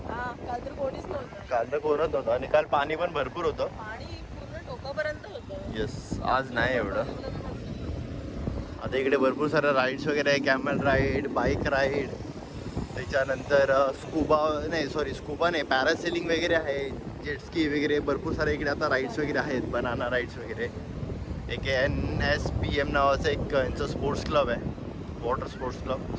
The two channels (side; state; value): both; identical; correlation 1.00